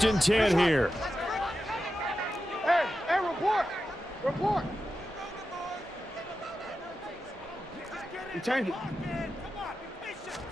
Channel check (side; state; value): both; normal; correlation 0.91